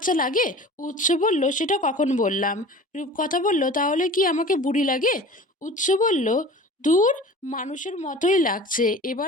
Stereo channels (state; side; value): normal; both; correlation 0.40